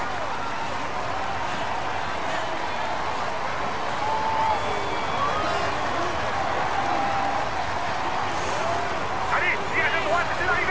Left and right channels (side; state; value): both; identical; correlation 1.00